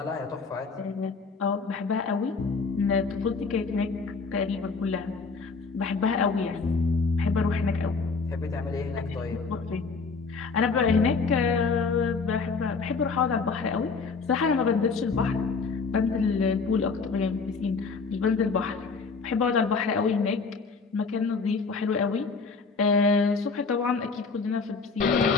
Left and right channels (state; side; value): quieter; right; 4.6 dB